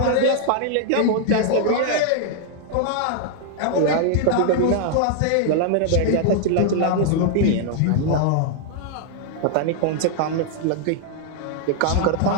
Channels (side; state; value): both; different; correlation 0.00